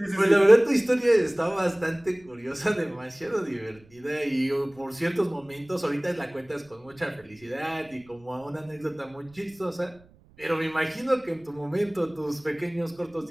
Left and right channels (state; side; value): noise; right; rumble, 27 dB below the sound